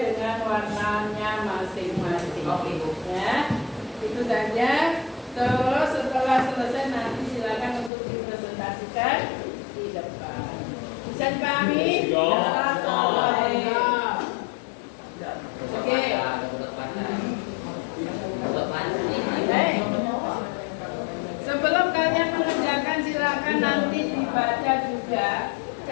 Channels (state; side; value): drops out; right; at 7.9 s